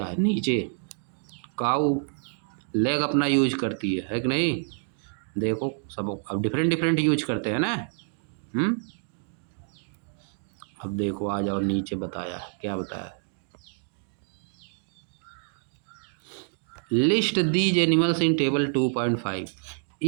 है नीचे, काऊ लेग अपना यूज करती है कि नहीं। देखो सब अब डिफरेंट डिफरेंट यूज करते हैं ना। अब देखो आ जाओ नीचे, बताया क्या बताया, list these animals in table 2.5।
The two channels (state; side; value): silent; left; 60 dB below the other